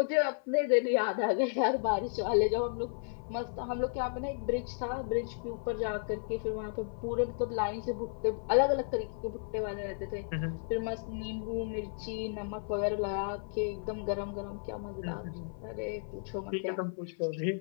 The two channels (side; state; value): right; silent; 55 dB below the other